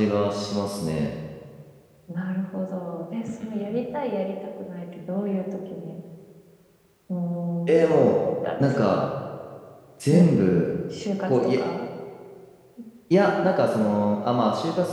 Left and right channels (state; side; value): identical; both; correlation 1.00